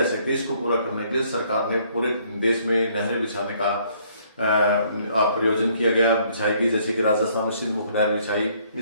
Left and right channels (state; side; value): inverted; both; correlation -0.64